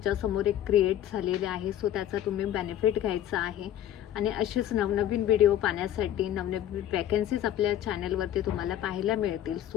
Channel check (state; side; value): quieter; right; 11.5 dB